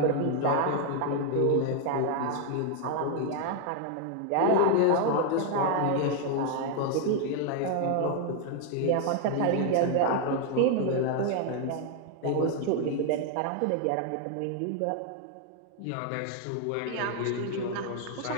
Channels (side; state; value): both; different; correlation 0.00